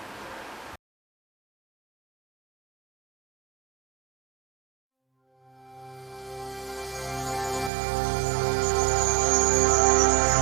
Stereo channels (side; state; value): left; drops out; at 7.7 s